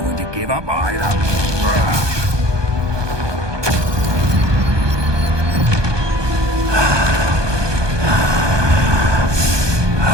when to give up either.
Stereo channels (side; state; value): left; late; 1.2 ms